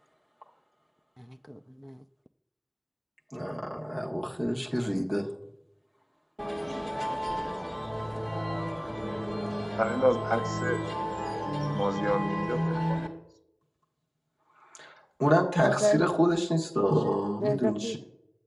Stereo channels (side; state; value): both; identical; correlation 1.00